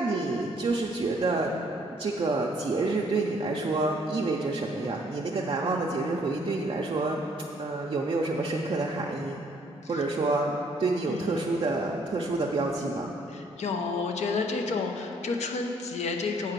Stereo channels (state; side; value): normal; both; correlation 0.63